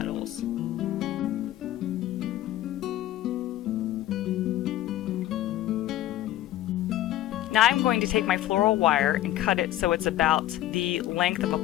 Now I'm going to take my floral wire and cut it so it's about the length of a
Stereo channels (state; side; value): quieter; right; 14.0 dB